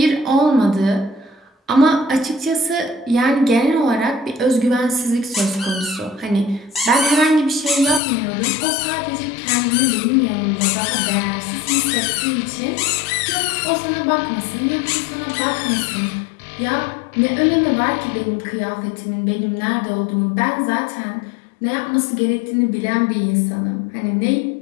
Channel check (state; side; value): drops out; right; at 8.0 s